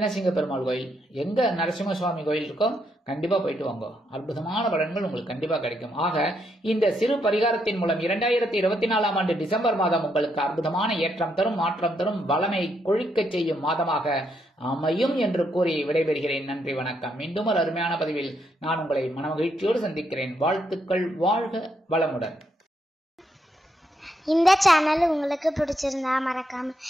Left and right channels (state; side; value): normal; both; correlation 0.77